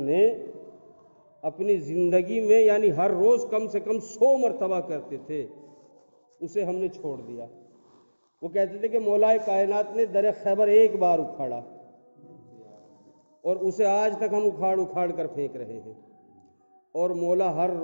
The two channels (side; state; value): both; inverted; correlation -1.00